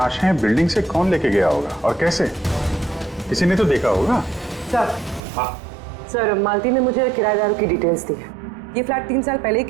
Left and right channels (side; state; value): left; drops out; at 5.2 s